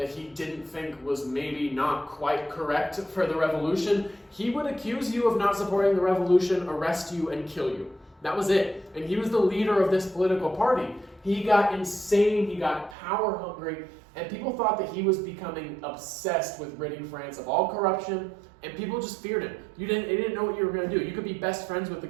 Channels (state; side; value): drops out; left; at 13.0 s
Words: he didn't think was maybe not quite correct for the revolution, he would accuse you of not supporting the revolution, arrest you, and kill you. That was it. And he was the leader of this political party. He got insane, he got power hungry, and people thought that he was becoming obsessed with ridding France of all corruption, and people just feared him. They didn't know what you were going to do. You could be best friends with the